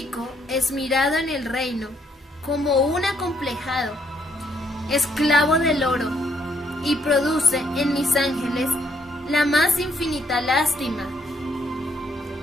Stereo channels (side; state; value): both; normal; correlation 0.71